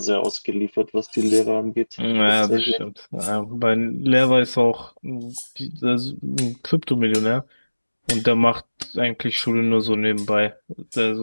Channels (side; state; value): both; inverted; correlation -1.00